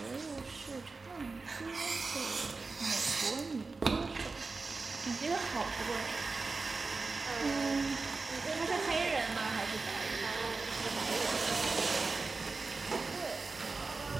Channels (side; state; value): left; quieter; 3.9 dB